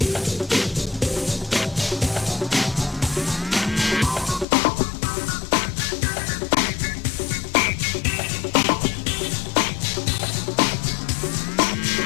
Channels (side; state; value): right; drops out; at 4.5 s